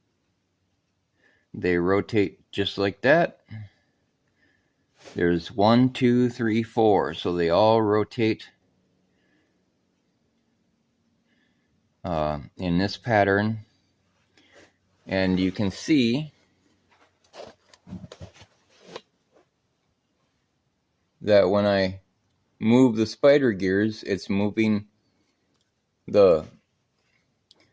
They rotate just like that. There's 1, 2, 3, 4, so they all rotate in this pattern. And you can see that when I move the spider gears, it's moving the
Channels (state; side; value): identical; both; correlation 1.00